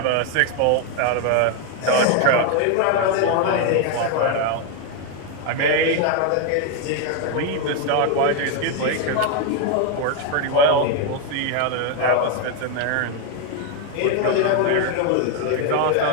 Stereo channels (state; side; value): different; both; correlation 0.01